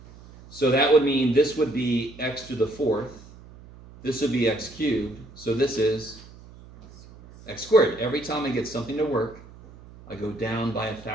So that would mean this would be x to the 4th. This would be x cubed. So this is x squared. Every time I get something to work, I go down by a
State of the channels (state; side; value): noise; right; hum, 20 dB below the sound